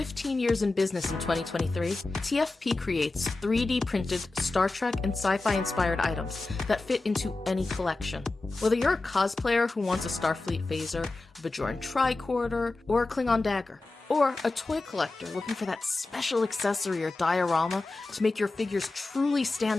years in business in 2023, TFP creates 3D printed Star Trek and sci-fi inspired items that fit into any collection. Whether you're a cosplayer who wants a Starfleet phaser, a Bajoran tricorder, or a Klingon dagger, or a toy collector looking for that special accessory or diorama to make your figures truly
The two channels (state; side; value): quieter; right; 3.2 dB